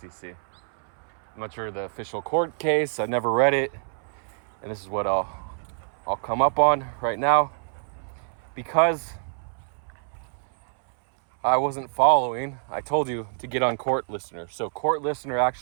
I'm not sure the official court case. I never read it. And this is what I'll come up on right now. Because I wasn't following, I told you to get on Court Listener. So Court Listener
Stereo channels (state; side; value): silent; left; 61 dB below the other